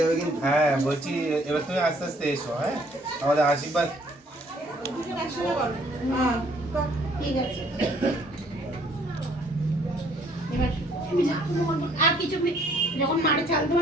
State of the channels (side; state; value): both; normal; correlation 0.63